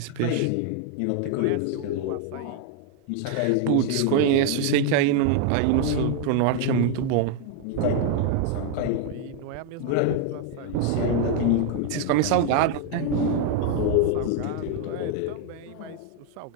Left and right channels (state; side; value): different; both; correlation 0.01